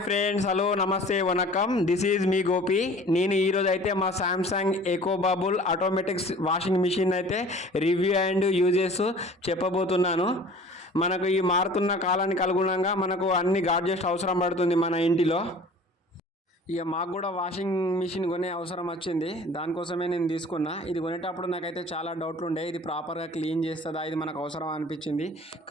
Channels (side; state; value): both; normal; correlation 0.46